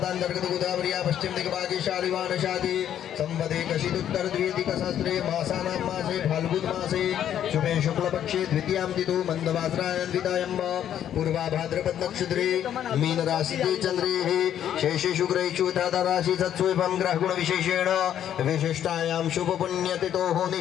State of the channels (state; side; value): quieter; right; 10.3 dB